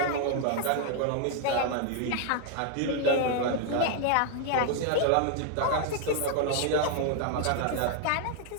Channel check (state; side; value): different; both; correlation 0.00